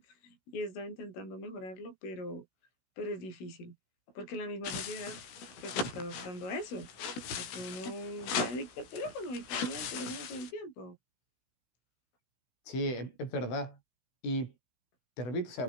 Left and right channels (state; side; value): late; right; 16 ms